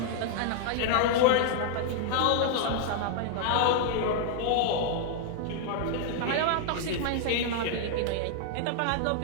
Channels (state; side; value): different; both; correlation 0.00